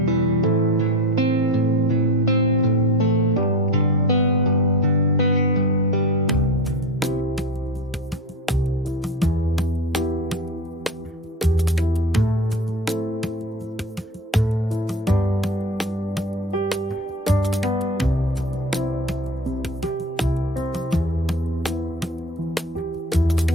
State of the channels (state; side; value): normal; both; correlation 0.29